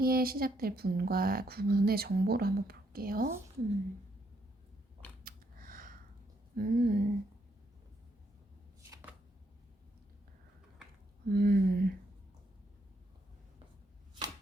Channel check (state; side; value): normal; both; correlation 0.74